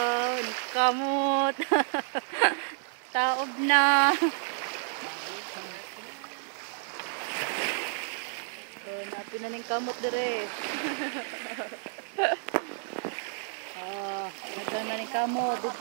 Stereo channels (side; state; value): left; silent; 57 dB below the other